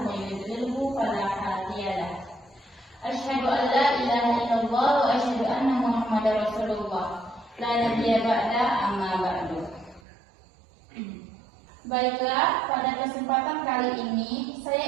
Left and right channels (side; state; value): left; drops out; at 10.0 s